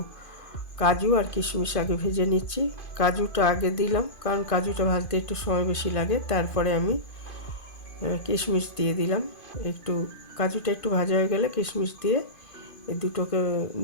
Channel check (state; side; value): late; right; 2.5 ms